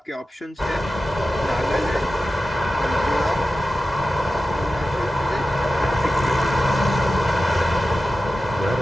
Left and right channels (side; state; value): both; normal; correlation 0.94